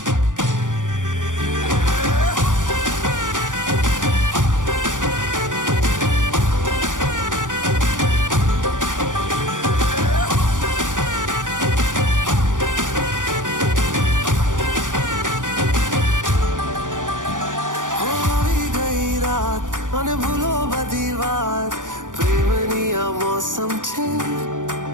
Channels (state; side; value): late; left; 0.87 ms